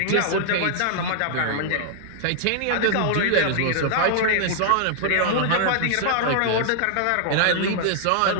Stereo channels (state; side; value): different; both; correlation 0.00